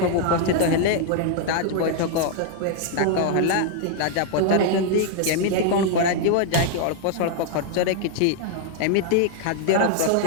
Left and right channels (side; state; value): both; different; correlation 0.00